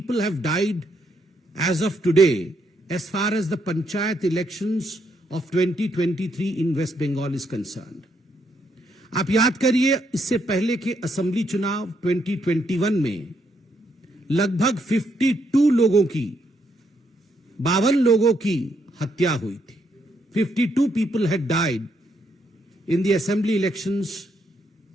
have died as of today as far as the panchayat elections of 2023 in West Bengal is concerned. आप याद करिए, इससे पहले के असेंबली चुनाव 2021 में लगभग 52 लोगों की, 52 लोगों की हत्या हुई थी। 52 people had died in the assembly elections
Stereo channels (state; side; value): normal; both; correlation 0.76